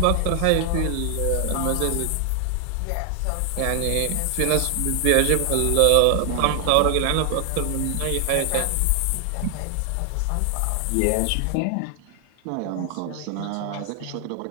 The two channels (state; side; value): different; both; correlation 0.00